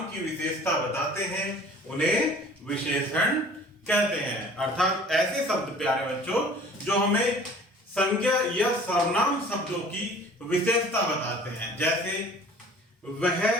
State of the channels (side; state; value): both; normal; correlation 0.48